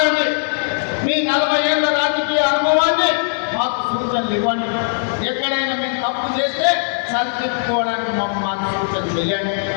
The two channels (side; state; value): right; silent; digital silence